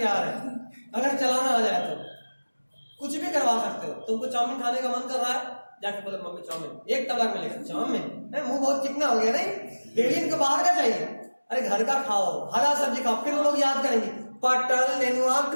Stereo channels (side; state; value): both; inverted; correlation -1.00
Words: है। अगर चलाना आ जाए तो कुछ भी करवा सकते हो। तुमको चाउमीन खाने का मन कर रहा है, जाके बोले मम्मी चाउमीन, एक तलाक में लेकर चाउमीन, मुंह बहुत चिकना हो गया नहीं, डेली इनको बाहर का चाहिए। अरे घर का खाओ, हरा सब्जी खाओ, फिर वो लोग याद करेंगे पटल नेनुआ